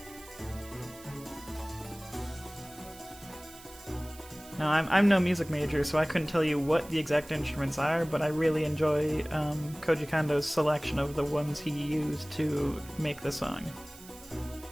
Now, I'm no music major, so I couldn't tell you what the exact instruments are, but I really enjoy Koji Kondo's selection of the ones he used to make the song.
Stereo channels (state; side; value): noise; right; hiss, 19 dB below the sound